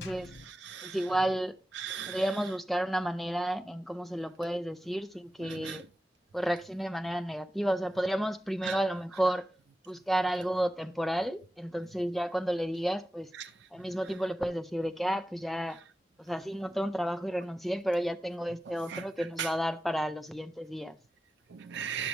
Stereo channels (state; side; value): normal; both; correlation 0.93